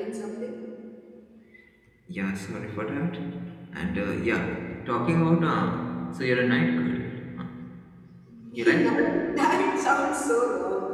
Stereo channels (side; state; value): both; identical; correlation 1.00